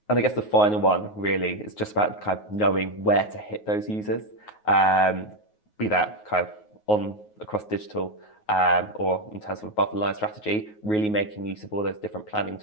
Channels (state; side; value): late; right; 9.4 ms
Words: And I guess the final one really is just about kind of knowing where to hit those users, be that kind of across digital or in terms of above the line strategy, really making use of all those different planning